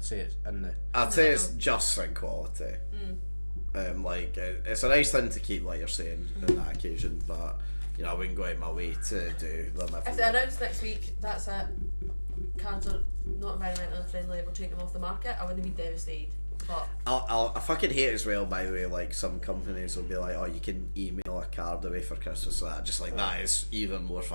say it's in the. I'd say it's just in quality. Like it's a nice thing to keep, like you're saying, on that occasion, but you know I wouldn't go out my way to do them If they announce next week, that's it. Cards are not environmentally friendly. We're taking them off the market. I wouldn't be devastated. But I fucking hate as well, by the way, like some companies will be like, oh, you can email a card away for Christmas, so that just like that is even more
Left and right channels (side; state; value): both; inverted; correlation -1.00